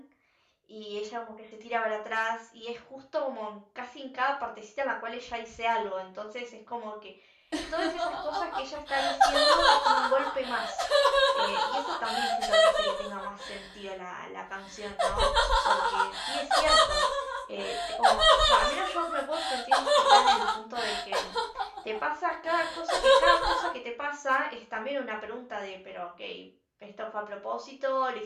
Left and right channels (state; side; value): identical; both; correlation 1.00